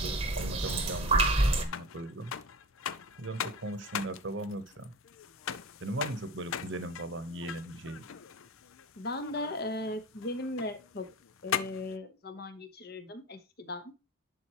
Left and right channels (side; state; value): both; normal; correlation 0.31